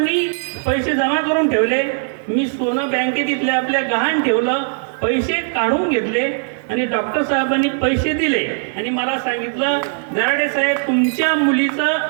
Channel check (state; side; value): silent; left; digital silence